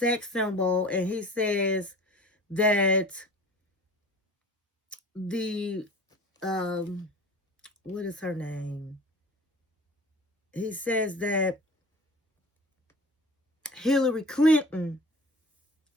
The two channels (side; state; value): both; normal; correlation 0.41